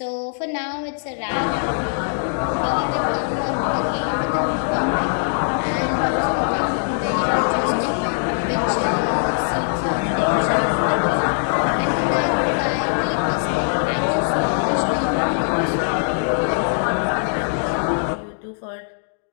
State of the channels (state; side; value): silent; right; 65 dB below the other